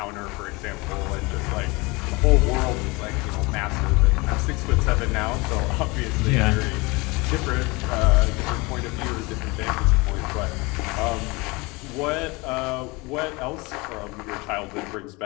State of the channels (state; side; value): quieter; right; 25.2 dB